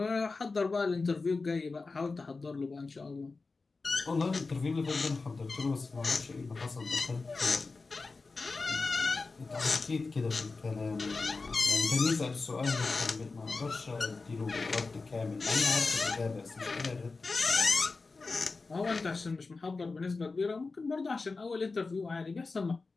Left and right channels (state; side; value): quieter; right; 4.0 dB